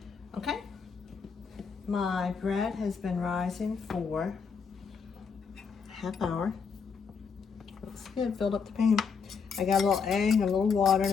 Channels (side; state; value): right; quieter; 5.8 dB